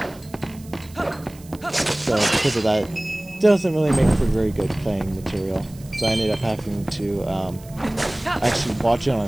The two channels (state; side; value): noise; right; hiss, 23 dB below the sound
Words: So because of that, it doesn't really make for very good playing material. So I ended up having to actually watch it on